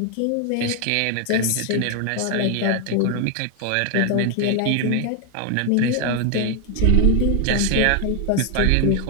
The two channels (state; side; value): different; both; correlation 0.01